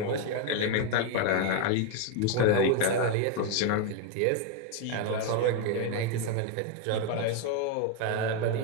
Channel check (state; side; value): different; both; correlation 0.01